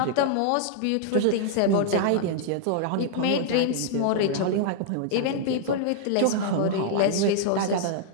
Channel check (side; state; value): both; different; correlation -0.01